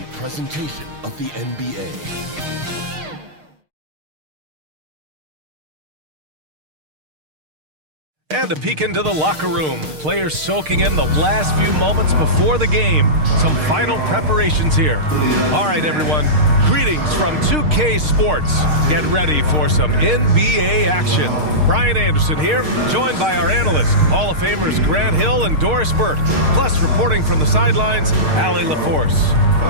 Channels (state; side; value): late; left; 6.5 ms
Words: presentation of the NBA. And a peek into the locker room. Players soaking in the last few moments before the game. Some final preparations here. All right, everyone. Greetings from 2K Sports. Get ready for some NBA action. Brian Anderson here, joined by our analysts, Hall of Famers Grant Hill and Doris Burke. Plus, reporting from the sidelines, Allie LaForce.